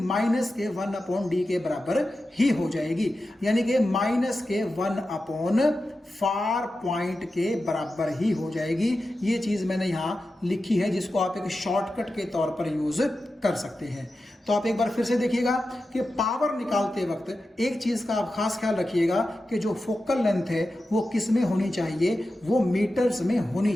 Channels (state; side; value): normal; both; correlation 0.92